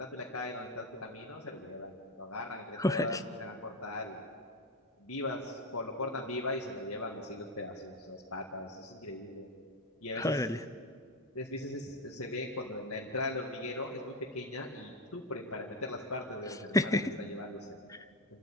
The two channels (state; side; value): normal; both; correlation 0.18